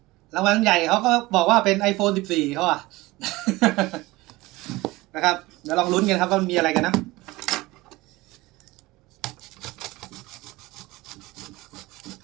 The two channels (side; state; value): left; quieter; 20.3 dB